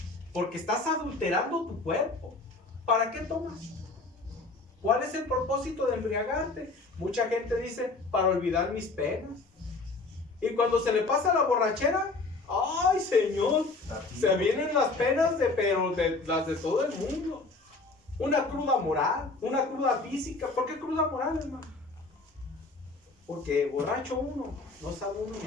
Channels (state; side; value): quieter; right; 3.6 dB